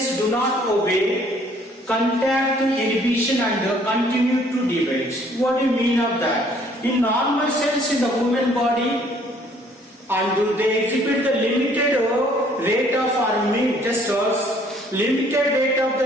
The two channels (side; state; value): both; normal; correlation 0.60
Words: do not obey contact inhibition and continue to divide. What do you mean of that? In normal cells in the human body, and they exhibit the limited rate of limited rate of